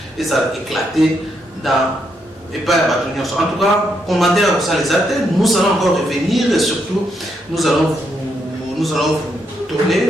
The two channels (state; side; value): normal; both; correlation 0.78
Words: éclater dans et pas à en tout cas, commentaire ça les attend. Nous allons encore revenir et surtout nous allons vous donner